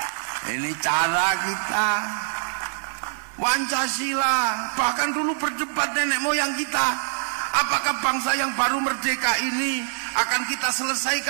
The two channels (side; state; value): left; silent; digital silence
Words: Ini cara kita. Pancasila, bahkan dulu berdebat nenek moyang kita, apakah bangsa yang baru merdeka ini akan kita